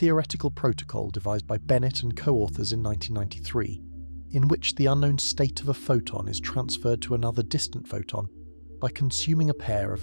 protocol devised by Bennett and co-authors in 1993, in which the unknown state of a photon is transferred to another distant photon by consuming a pair of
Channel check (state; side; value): inverted; both; correlation -1.00